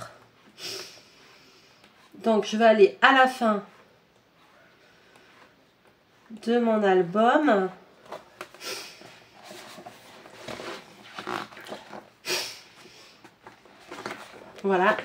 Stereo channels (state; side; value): identical; both; correlation 1.00